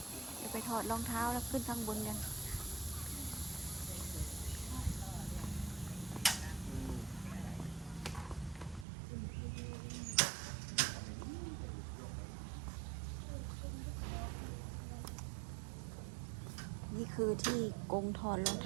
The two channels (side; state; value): left; drops out; at 8.8 s